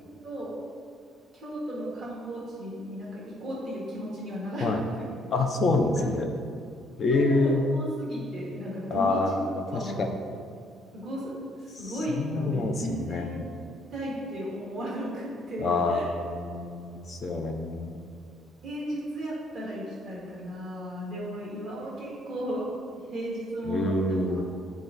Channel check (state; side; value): normal; both; correlation 0.66